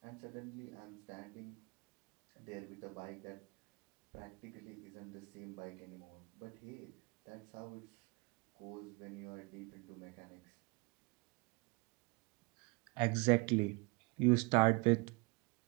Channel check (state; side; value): quieter; left; 28.9 dB